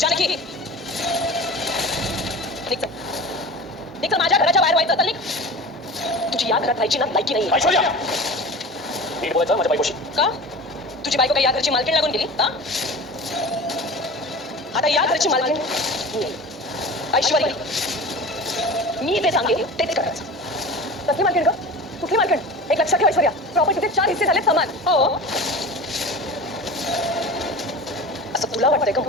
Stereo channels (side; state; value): both; normal; correlation 0.35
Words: निघ माझ्या घराच्या बाहेर व्हायचं. निघ. तुझी या घरात राहायची ना लायकी नाही. ऐश्वर्या नीट बोलायचं माझ्या बायकोशी. का तुझी बायको काही या घरची मालकीण लागून गेली? आता या घरची मालकीण ऐश्वर्या, मी जे सांगेन तेच करायचं. कसली मालकीण ग? कुठली मालकीण? एक लक्षात ठेव ऐश्वर्या, प्रॉपर्टीचे 4 हिस्से झाले समान. हो, असं तुला वाटतंय का